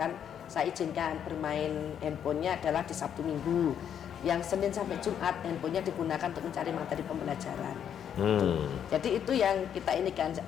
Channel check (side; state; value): right; quieter; 8.9 dB